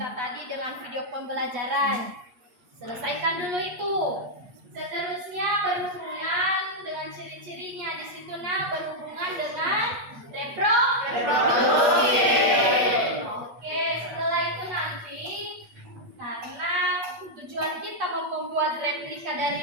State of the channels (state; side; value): late; left; 8.4 ms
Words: tadi dengan video pembelajaran. Selesaikan dulu itu. Seterusnya berhubungan dengan ciri-cirinya di situ berhubungan dengan reproduksi. Oke, setelah itu nanti karena tujuan kita membuat replika